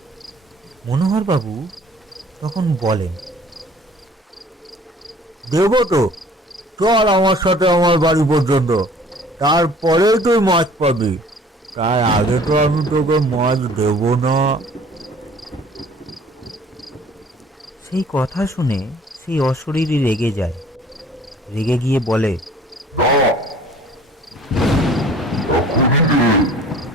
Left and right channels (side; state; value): both; normal; correlation 0.52